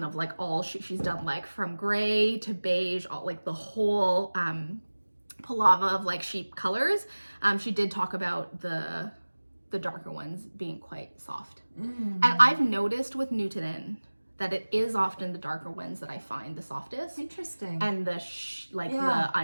of like all she's done, like from gray to beige, all like the whole palava of like sheep colors. She did talk about the darker ones being quite soft. And I've noticed with Nutiden that it is often the darker ones that I find the softest. Interesting. And the the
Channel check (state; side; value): inverted; both; correlation -1.00